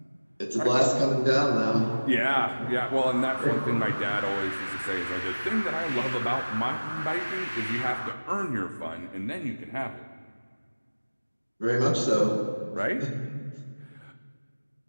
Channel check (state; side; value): inverted; both; correlation -1.00